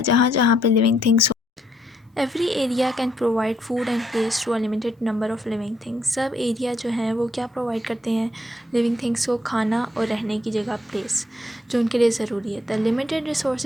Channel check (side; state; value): both; normal; correlation 0.72